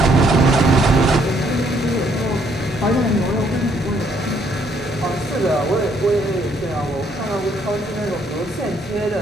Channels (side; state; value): both; normal; correlation 0.68